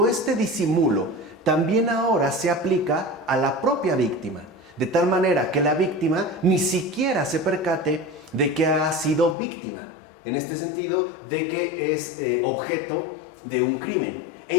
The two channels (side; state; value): right; drops out; at 9.3 s